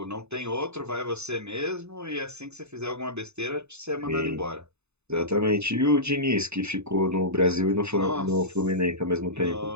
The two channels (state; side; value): late; left; 0.81 ms